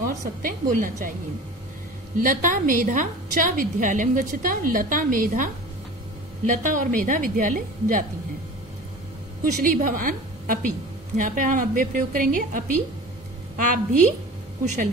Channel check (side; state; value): both; normal; correlation 0.38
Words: सत्य बोलना चाहिए। लता मेधा च विद्यालयम गच्छता, लता मेधा, लता और मेधा विद्यालय जाती हैं। कुशली भवान अपि, यहाँ पे हम अव्यय प्रयोग करेंगे अपि, आप भी कुशल